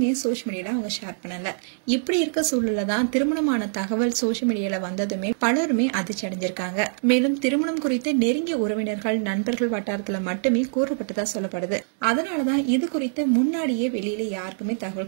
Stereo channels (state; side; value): silent; left; digital silence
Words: சோசியல் மீடியால அவங்க ஷேர் பண்ணல. இப்படி இருக்க சூழல்ல தான் திருமணமான தகவல் சோசியல் மீடியால வந்ததுமே பலருமே அதிர்ச்சி அடைஞ்சிருக்காங்க. மேலும் திருமணம் குறித்து நெருங்கிய உறவினர்கள், நண்பர்கள் வட்டாரத்துல மட்டுமே கூறப்பட்டதா சொல்லப்படுது. அதனாலதான் இது குறித்து முன்னாடியே வெளியில யாருக்குமே